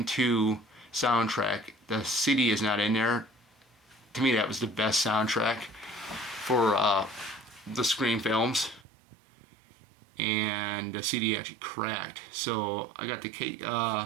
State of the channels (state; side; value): drops out; left; at 8.8 s